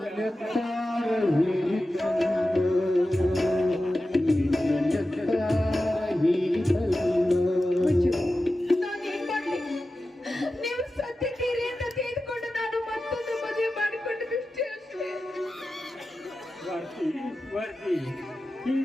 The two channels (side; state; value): both; normal; correlation 0.93